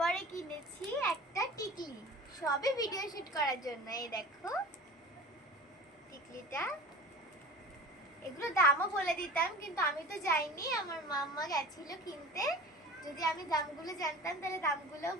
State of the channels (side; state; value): both; normal; correlation 0.39